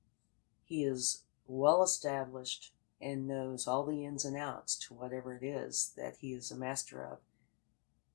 He is well established and knows all the ins and outs to whatever it is that he is a master of.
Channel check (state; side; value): quieter; right; 37.5 dB